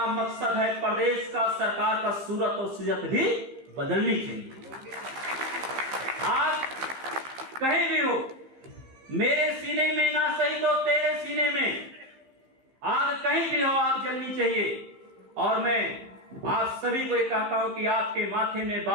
मकसद है प्रदेश का, सरकार का सूरत और सीरत भी बदलनी चाहिए। आप कहीं भी हो, मेरे सीने में ना सही तो तेरे सीने में आग कहीं भी हो, आग जलनी चाहिए। और मैं आप सभी को ये कहता हूं कि आपके माथे में,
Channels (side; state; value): left; late; 15 ms